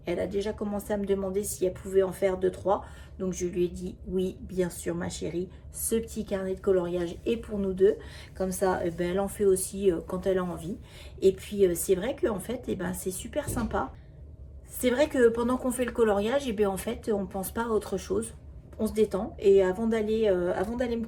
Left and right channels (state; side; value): identical; both; correlation 1.00